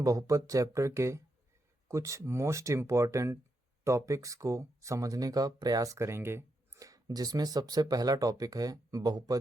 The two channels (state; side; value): normal; both; correlation 0.83